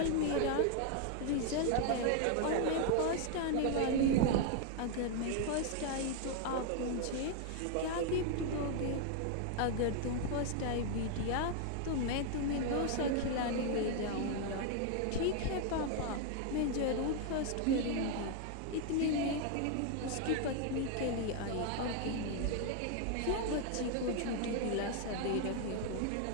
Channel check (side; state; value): both; different; correlation 0.00